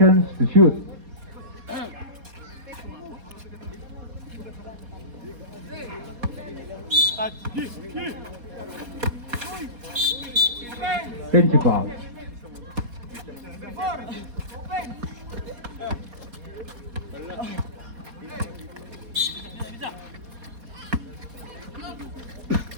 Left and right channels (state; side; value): late; left; 4.2 ms